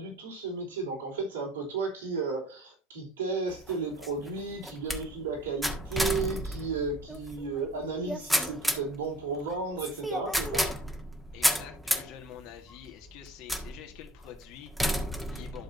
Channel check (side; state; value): both; normal; correlation 0.50